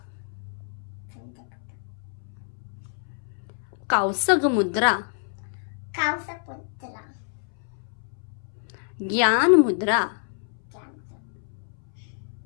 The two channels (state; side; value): silent; right; 60 dB below the other